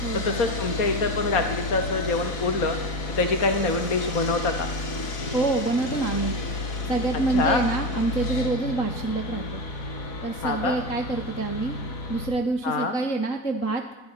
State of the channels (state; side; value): late; right; 4.0 ms